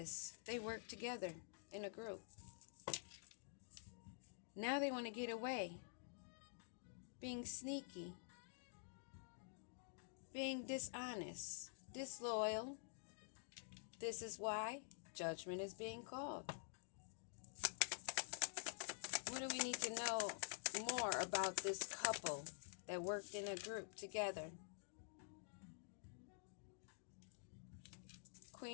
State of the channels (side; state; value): right; silent; digital silence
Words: They worked together in a group. Now they want to get away. Being sneaky. Being dishonest. Disloyal. This is why judgment is being called. What do we need to know more about this couple that worked in a group together?